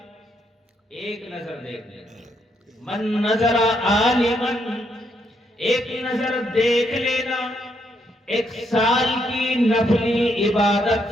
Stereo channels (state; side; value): normal; both; correlation 0.76